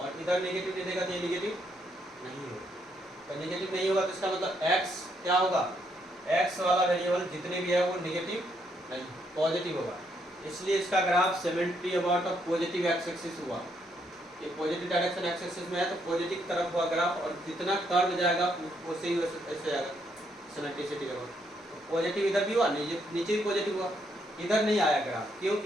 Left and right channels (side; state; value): both; normal; correlation 0.74